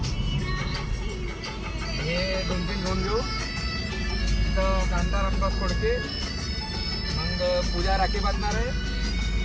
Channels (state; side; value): identical; both; correlation 1.00